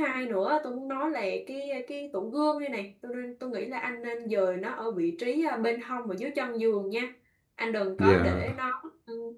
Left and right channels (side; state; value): both; identical; correlation 1.00